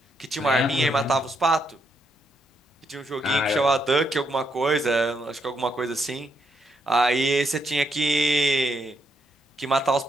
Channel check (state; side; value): normal; both; correlation 0.77